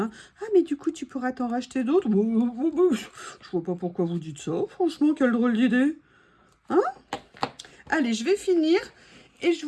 Ah, mais du coup, tu pourras t'en racheter d'autres. Je vois pas pourquoi vous dites ça. Franchement, quelle drôle d'idée. Hein? Allez, je vais finir et je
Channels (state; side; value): identical; both; correlation 1.00